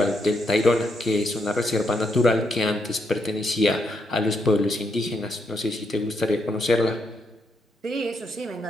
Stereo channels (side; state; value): both; normal; correlation 0.78